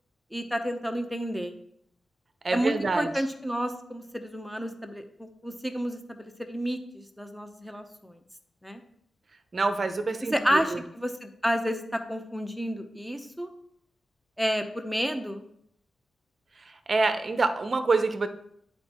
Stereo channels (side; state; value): both; normal; correlation 0.95